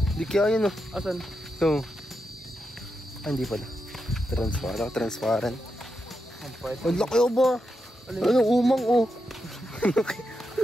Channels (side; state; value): both; normal; correlation 0.86